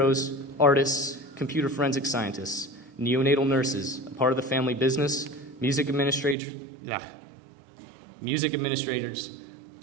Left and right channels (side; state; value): left; drops out; at 6.4 s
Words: artists, computer forensic scientists, neonatal nurses, a part of the family business, music administrators,